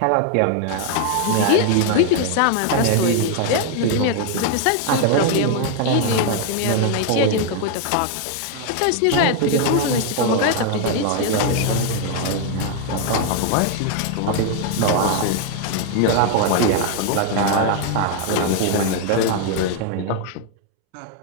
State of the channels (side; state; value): both; different; correlation 0.00